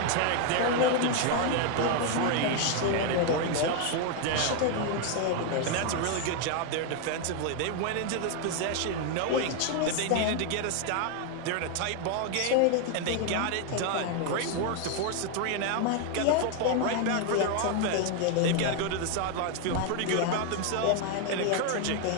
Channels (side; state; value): both; different; correlation 0.01